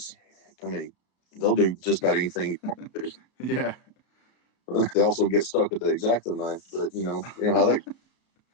I mean they'll do just about anything you want to do. Yeah, They also get stuck with the X-Acto knife, but you know how that.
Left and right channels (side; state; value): right; late; 33 ms